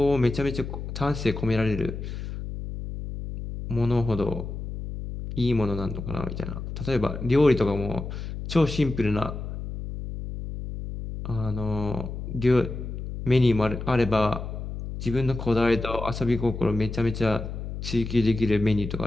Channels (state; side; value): noise; left; hum, 7 dB below the sound